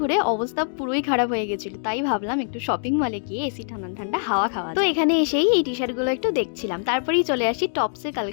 অবস্থা পুরোই খারাপ হয়ে গেছিল, তাই ভাবলাম একটু শপিং মলে গিয়ে এসি ঠান্ডা ঠান্ডা হাওয়া খাওয়া। তো এখানে এসেই এই টি শার্ট গুলো একটু দেখছিলাম, তারপরেই চলে আসি টপসের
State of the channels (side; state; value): right; silent; digital silence